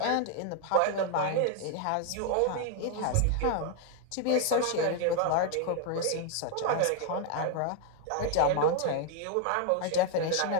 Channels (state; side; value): different; both; correlation 0.01